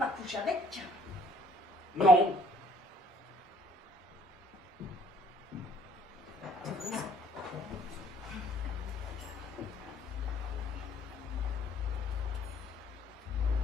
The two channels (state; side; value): normal; both; correlation 0.61